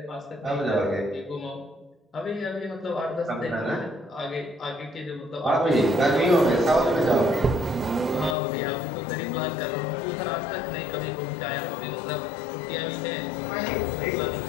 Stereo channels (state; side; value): drops out; right; at 8.3 s